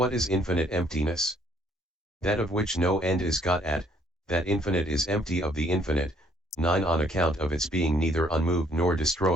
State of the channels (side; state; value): both; normal; correlation 0.64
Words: is infinite emptiness? That of which no end is got at, that infinite is empty of the infinite, 9 on account of its being neither unmoved nor